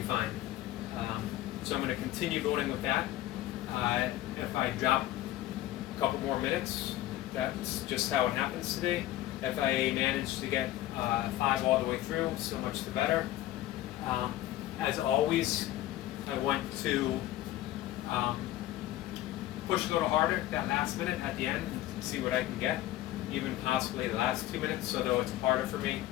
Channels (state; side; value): quieter; right; 14.9 dB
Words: fine. So I'm going to continue building with that. If I drop a couple more minutes, that's just how it happens today. If I manage to get 5 all the way through, so much the better. As always, I want to push a little harder that last minute at the end and see what I can get. Even possibly the last 2 minutes, although it's harder for me